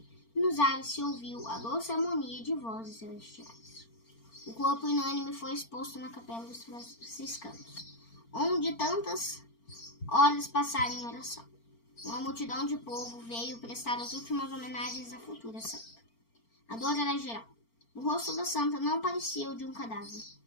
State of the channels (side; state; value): right; late; 4.4 ms